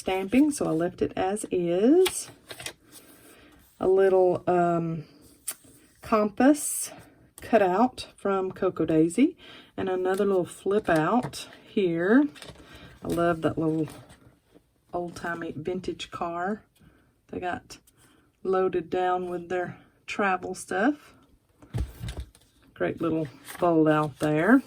so I left it as is. A little compass cut out from Cocoa Daisy, and another little flip out here. I love that little old-timey vintage car they got loaded down with their travel stuff. Great little fold out there.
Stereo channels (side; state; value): both; identical; correlation 1.00